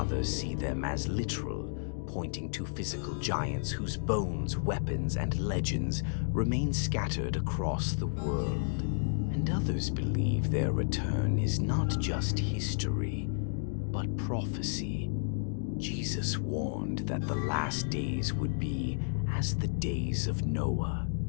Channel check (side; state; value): right; silent; digital silence